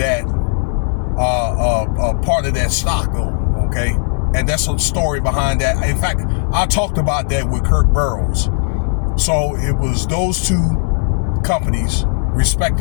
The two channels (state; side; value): silent; right; 63 dB below the other